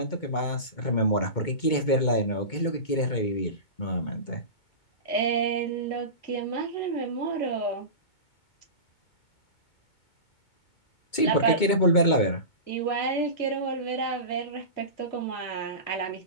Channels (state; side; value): late; right; 2.2 ms